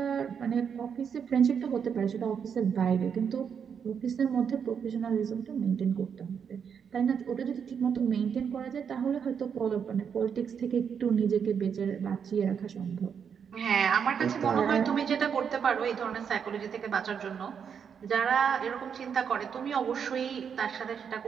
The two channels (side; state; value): left; quieter; 7.2 dB